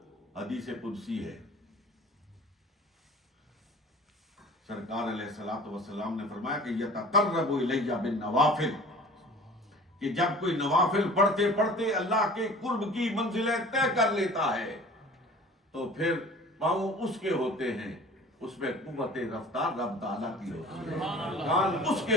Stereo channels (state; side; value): normal; both; correlation 0.44